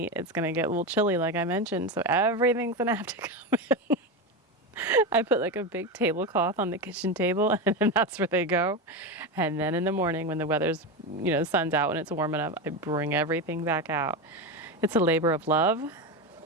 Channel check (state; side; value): normal; both; correlation 0.17